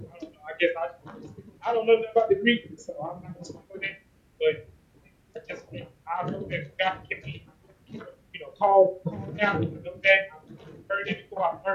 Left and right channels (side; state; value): both; identical; correlation 1.00